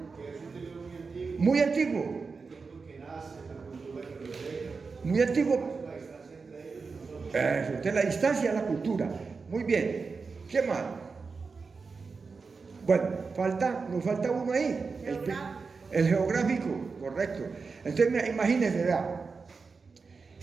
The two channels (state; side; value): quieter; left; 4.7 dB